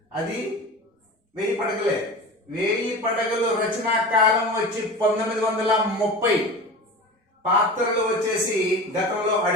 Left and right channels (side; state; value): both; normal; correlation 0.32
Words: అది 1000 పడగలే. 1000 పడగలు రచనా కాలం వచ్చి 1930. పాత్రలు వచ్చేసి గతంలో